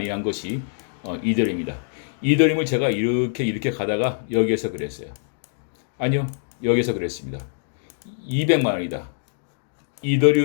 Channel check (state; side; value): silent; right; digital silence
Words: 한 것이 이더리움입니다. 이더리움을 제가 이렇게 가다가 여기에서 그랬어요. 아니요, 여기서 그랬습니다. 200만 원이다.